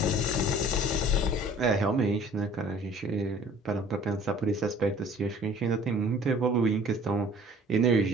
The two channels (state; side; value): normal; both; correlation 0.51